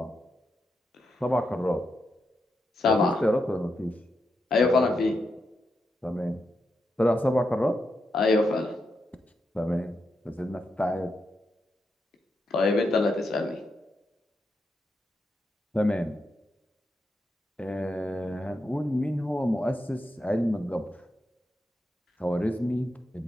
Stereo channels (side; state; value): both; normal; correlation 0.85